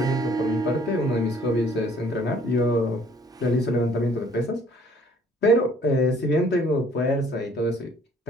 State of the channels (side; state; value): both; normal; correlation 0.58